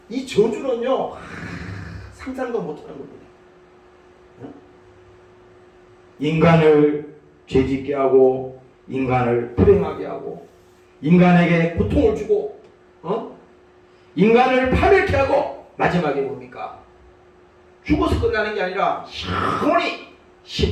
이 저주는요 상상도 못하는 겁니다. 인간을 죄짓게 하고 인간을 불행하게 하고 인간에게 고통을 주고 인간을 파멸케 하고 마지막에 뭡니까? 죽어서 끝나는 게 아니라 영원히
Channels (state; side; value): identical; both; correlation 1.00